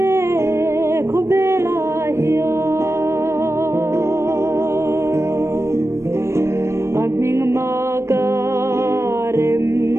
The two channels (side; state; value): left; late; 0.13 ms